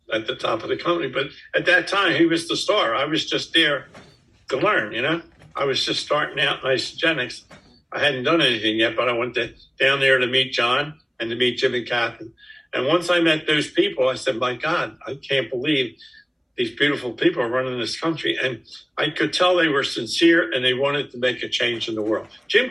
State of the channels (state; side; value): identical; both; correlation 1.00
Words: at the top of the company. But at that time, he was the star. I was just there to learn, you know. I was just starting out in Isagenix. I hadn't done anything yet, but I went down there to meet John and to meet Jim and Kathy. And once I met those people, I said, my God, I can't believe these beautiful people are running this country. And I could tell they were sincere and they wanted to make a change in the world. Jim